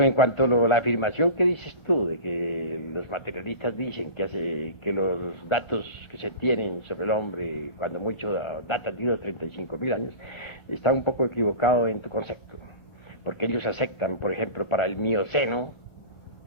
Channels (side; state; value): right; late; 1.0 ms